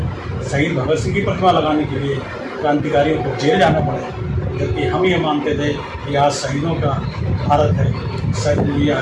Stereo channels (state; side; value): identical; both; correlation 1.00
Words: शहीद भगत सिंह की प्रतिमा लगाने के लिए क्रांतिकारियों को जेल जाना पड़ा। जबकि हम ये मानते थे कि आज शहीदों का भारत है, ये